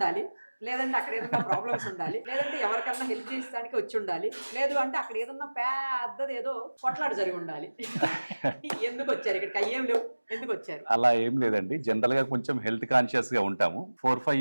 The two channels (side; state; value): both; inverted; correlation -1.00